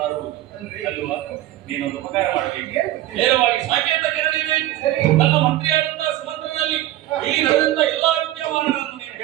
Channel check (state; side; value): quieter; left; 14.6 dB